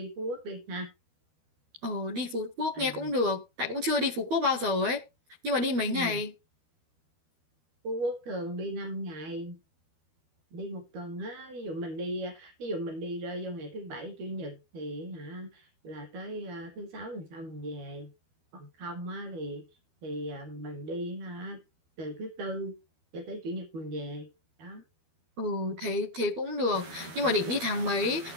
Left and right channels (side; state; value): left; late; 12 ms